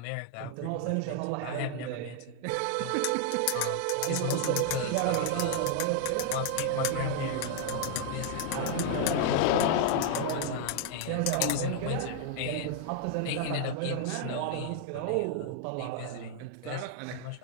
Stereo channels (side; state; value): both; different; correlation 0.00